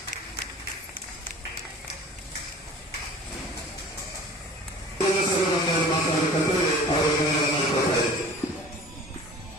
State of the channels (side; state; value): both; normal; correlation 0.44